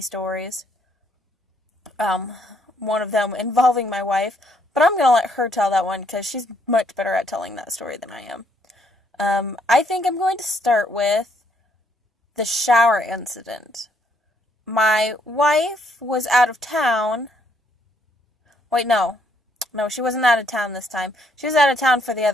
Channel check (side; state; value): both; normal; correlation 0.71